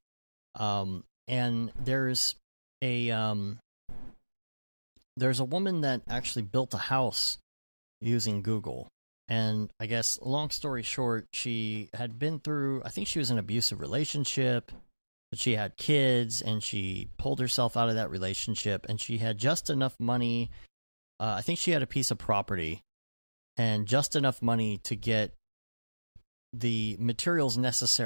And there's a woman that actually built a house using Google. And I guess, long story short, she had been through, I think she was in an abusive relationship, but she had kids, and she pulled herself out of that relationship, and she had just enough money I think she had a piece of property and just enough money to get the materials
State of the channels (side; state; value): both; inverted; correlation -1.00